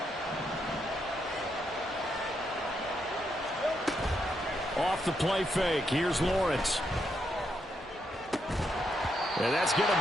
Off the play fake, here's Lawrence. And that's going to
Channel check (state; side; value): normal; both; correlation 0.80